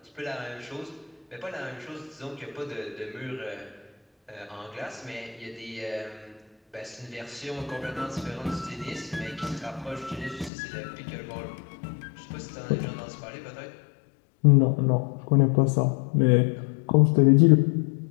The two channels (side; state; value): right; drops out; at 10.5 s